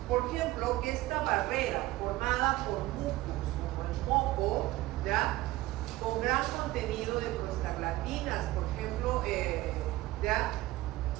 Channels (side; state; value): left; quieter; 17.8 dB